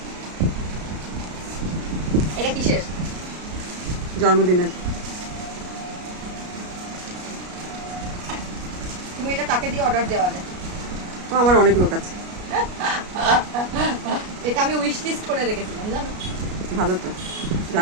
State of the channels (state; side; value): late; left; 33 ms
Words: এটা কিসের? জন্মদিনের। তুমি এটা কাকে দিয়ে অর্ডার দেওয়া যায়? ও আমার অনেক লোক আছে। এটা আমি উইশ লিস্ট করে রেখেছিলাম, জানো? ভালো তো,